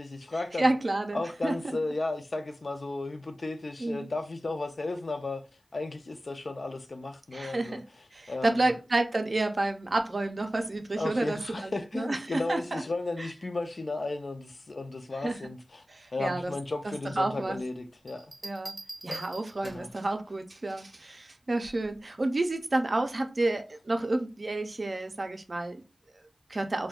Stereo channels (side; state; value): both; normal; correlation 0.96